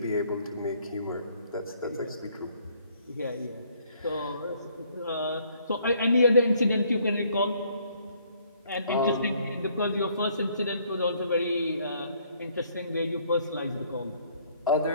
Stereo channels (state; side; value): inverted; both; correlation -0.64